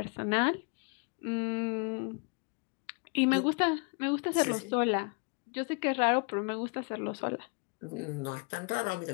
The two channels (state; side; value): quieter; right; 34.6 dB